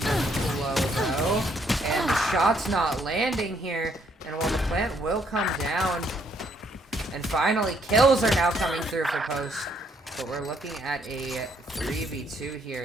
low though. And the shot's not landing here. And while the plant will come down, and finally kills are now coming through for Post. But we're looking at a 3v2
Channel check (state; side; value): normal; both; correlation 0.69